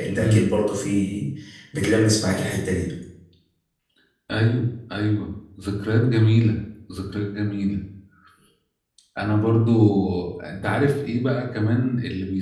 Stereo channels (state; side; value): identical; both; correlation 1.00